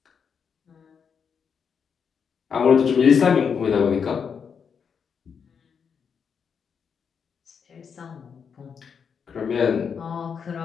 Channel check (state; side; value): quieter; right; 6.6 dB